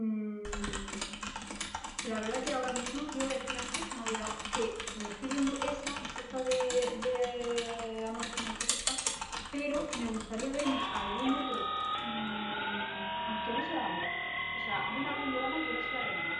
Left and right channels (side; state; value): both; identical; correlation 1.00